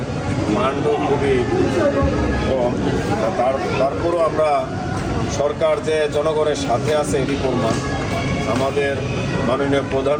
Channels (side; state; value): both; identical; correlation 1.00